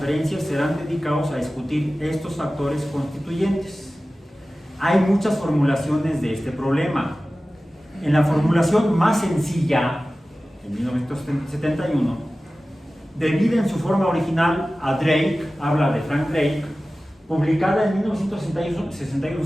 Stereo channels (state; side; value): normal; both; correlation 0.96